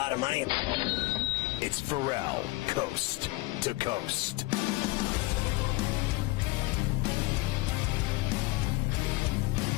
of money. It's Ferrall, coast to coast.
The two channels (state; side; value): quieter; right; 21.8 dB